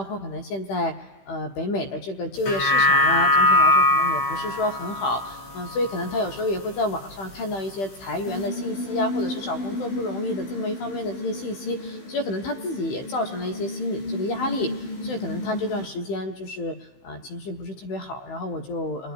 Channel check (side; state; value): right; late; 15 ms